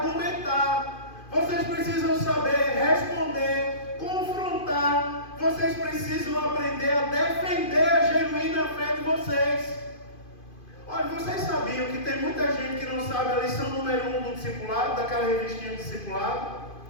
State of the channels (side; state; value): right; late; 2.5 ms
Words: vocês precisam saber responder, confrontar, vocês precisam aprender a defender a genuína fé de vocês. Olha, vocês sabiam que tem muita gente que não sabe a lição número 1 do discipulado, daquela revistinha do discipulado?